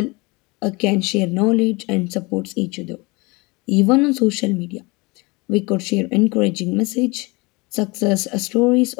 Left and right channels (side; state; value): right; quieter; 25.8 dB